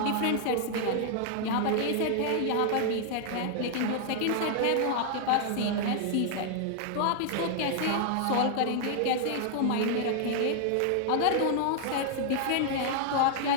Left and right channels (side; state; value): both; different; correlation 0.00